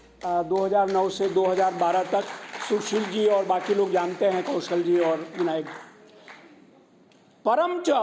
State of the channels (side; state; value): both; identical; correlation 1.00